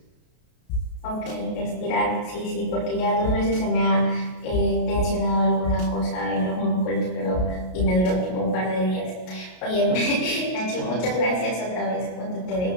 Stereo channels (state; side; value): late; right; 33 ms